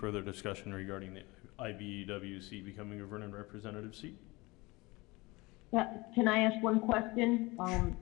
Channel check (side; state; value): right; quieter; 23.3 dB